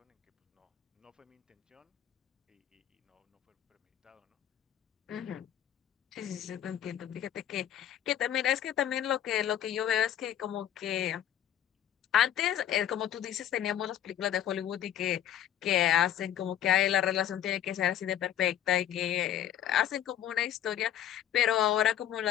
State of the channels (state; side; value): quieter; right; 10.7 dB